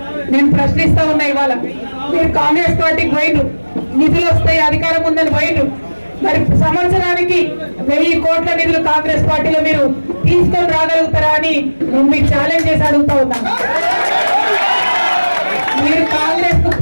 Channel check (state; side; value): inverted; both; correlation -1.00